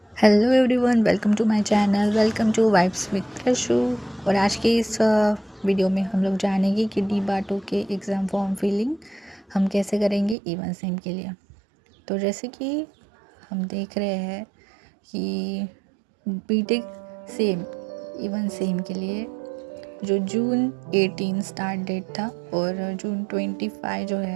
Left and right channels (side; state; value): left; drops out; at 10.4 s